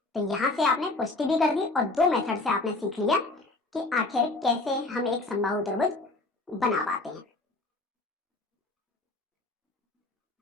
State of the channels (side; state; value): right; quieter; 3.1 dB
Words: तो यहाँ से आपने पुष्टि भी कर दी और 2 मेथड से आपने सीख लिया कि आखिर कैसे हम एक समबाहु त्रिभुज बना पाते हैं।